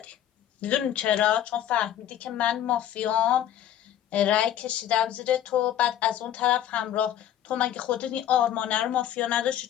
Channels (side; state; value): right; quieter; 11.2 dB